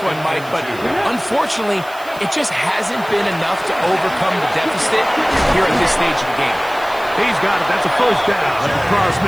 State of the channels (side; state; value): right; noise; hiss, 21 dB below the sound